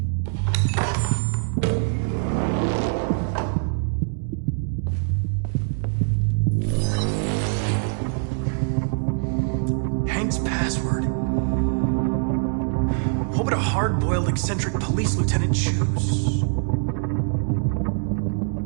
Password. What would a hard-boiled, eccentric police lieutenant choose?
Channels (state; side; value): silent; left; 63 dB below the other